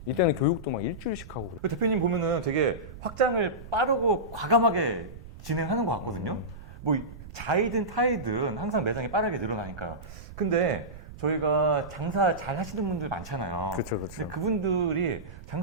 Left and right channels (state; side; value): noise; right; rumble, 15 dB below the sound